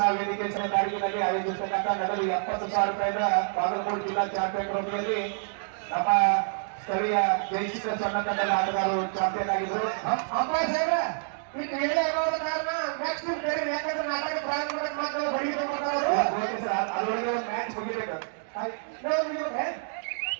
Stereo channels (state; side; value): silent; left; digital silence